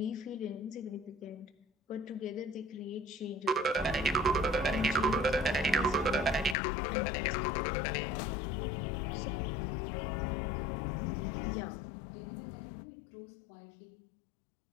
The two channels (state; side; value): drops out; right; at 6.6 s